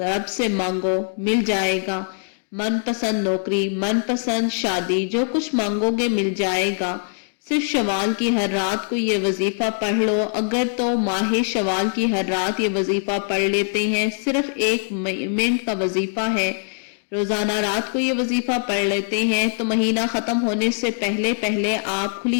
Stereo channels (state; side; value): silent; right; 64 dB below the other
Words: سے مانگو، مل جائے گا۔ من پسند نوکری، من پسند شادی، جو کچھ مانگو گے مل جائے گا۔ صرف شوال کی ہر رات کو یہ وظیفہ پڑھ لو، اگر تو ماہ شوال کی ہر رات یہ وظیفہ پڑھ لیتے ہیں، صرف 1 منٹ کا وظیفہ ہے، روزانہ رات کو یہ وظیفہ پڑھ لیتے ہیں تو مہینہ ختم ہونے سے پہلے پہلے آپ